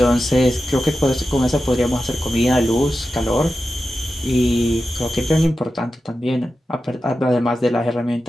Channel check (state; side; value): normal; both; correlation 0.92